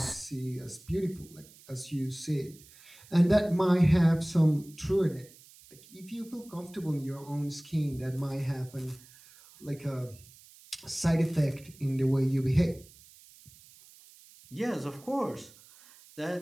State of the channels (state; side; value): noise; right; hiss, 23 dB below the sound